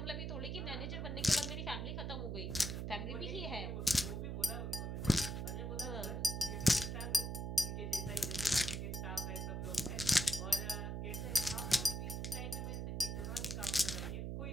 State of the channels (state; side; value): noise; right; hum, 3 dB below the sound